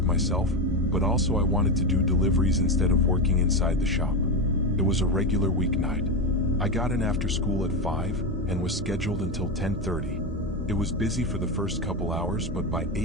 myself, but also I wanted to do deliveries instead of working inside the shop. It was a regular weeknight. I got in after school at 5 and was scheduled until 10:30. It was busy for the first couple hours, but by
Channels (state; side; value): normal; both; correlation 0.14